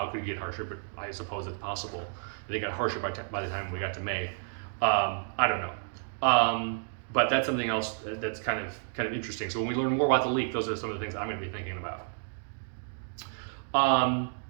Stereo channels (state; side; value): silent; left; 57 dB below the other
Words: it could get harsher, but I suppose it's possible. They got harsher by the time we got to May. I don't know. But that's something else that's kind of interesting. So when we learn more about the leak, those are some of the things I'm going to be thinking about.